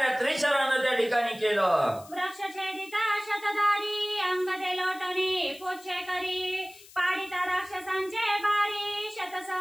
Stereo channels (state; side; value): noise; left; hiss, 21 dB below the sound